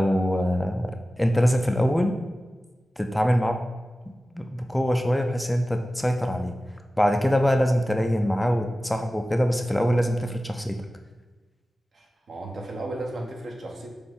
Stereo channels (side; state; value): both; normal; correlation 0.96